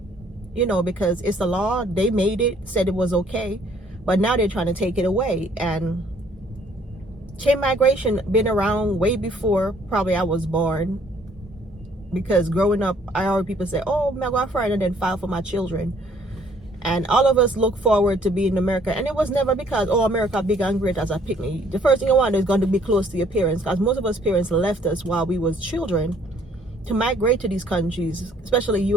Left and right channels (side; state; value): both; normal; correlation 0.61